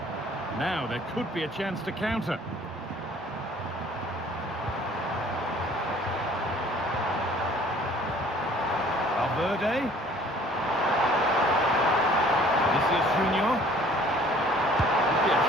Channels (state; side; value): normal; both; correlation 0.54